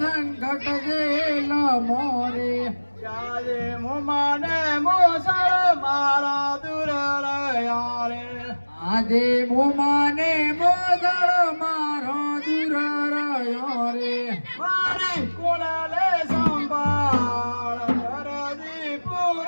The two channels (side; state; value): both; inverted; correlation -1.00